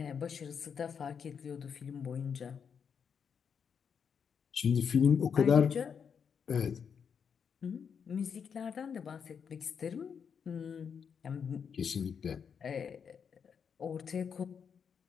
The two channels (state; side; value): quieter; right; 6.9 dB